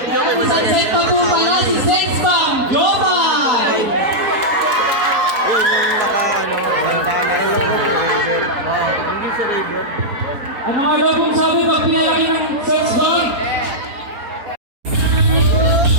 Yan, sunset pa po pala si Sex Bomb Global! Yun yung naka bandana. Wala ko driver. Hindi si Raver. Ang mga labong sabi, magpila kayo ng Sex Bomb!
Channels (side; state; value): left; late; 4.4 ms